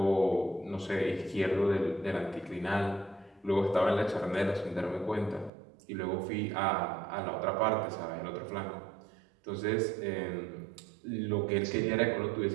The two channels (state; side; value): drops out; left; at 5.5 s